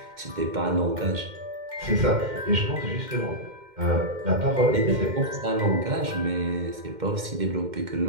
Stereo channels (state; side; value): late; left; 2.1 ms